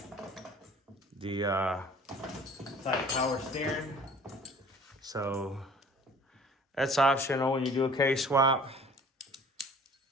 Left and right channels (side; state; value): both; normal; correlation 0.49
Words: the power steering. So that's optional when you do a case swap.